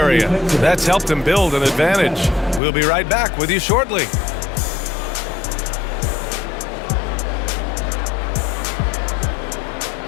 That's helped them build an advantage. We'll be right back with you shortly.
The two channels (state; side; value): drops out; right; at 2.6 s